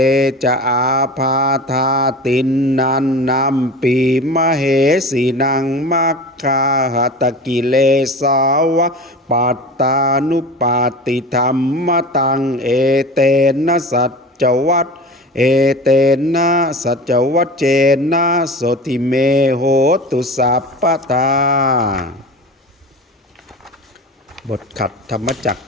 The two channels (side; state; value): both; normal; correlation 0.34